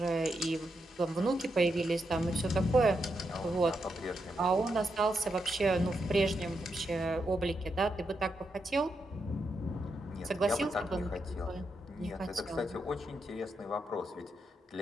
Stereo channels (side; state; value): both; normal; correlation 0.83